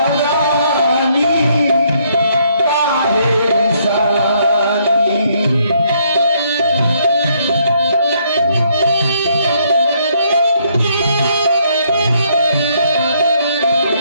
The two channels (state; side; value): inverted; both; correlation -0.70